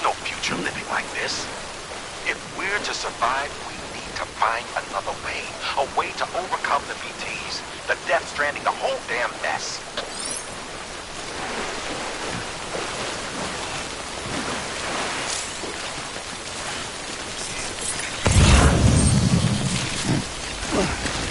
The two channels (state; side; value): identical; both; correlation 1.00